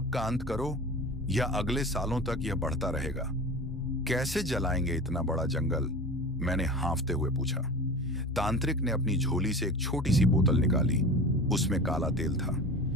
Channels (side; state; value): both; normal; correlation 0.33